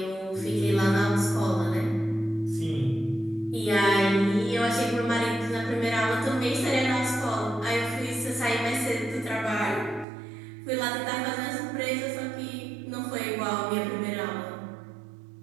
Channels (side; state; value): left; drops out; at 10.1 s